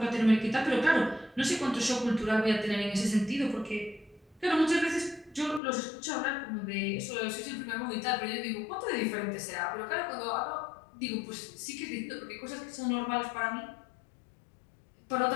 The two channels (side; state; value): right; drops out; at 5.6 s